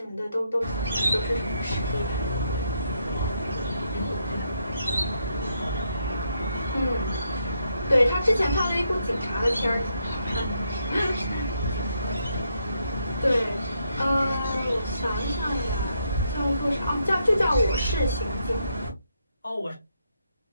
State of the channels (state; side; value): inverted; both; correlation -0.78